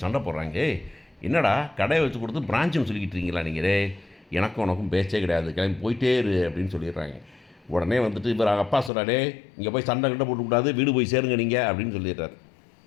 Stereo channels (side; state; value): right; drops out; at 8.9 s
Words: சண்டை போடுறாங்க, என்னடா கடையை வச்சு கொடுத்து பிரான்ச்சுன்னு சொல்லிக்கிட்டு இருக்கீங்களா நீங்கள்? எனக்கும் உனக்கும் பேச்சே கிடையாது, கிளம்பி போயிட்டே இரு அப்படின்னு சொல்லிடுறாங்க. உடனே வந்துட்டு இவர் அப்பா சொல்கிறாடே, இங்கே போய் சண்டை போட்டுக்கூடாது, வீடு போய் சேருங்க நீங்கள் அப்படின்னு சொல்லிடுறாரு.